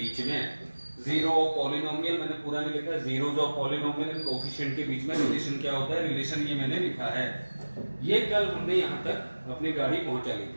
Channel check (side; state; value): both; inverted; correlation -1.00